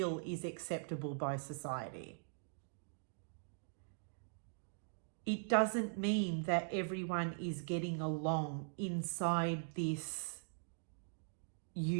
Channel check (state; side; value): silent; left; digital silence